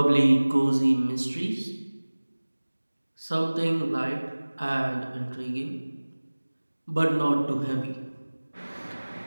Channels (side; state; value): both; inverted; correlation -1.00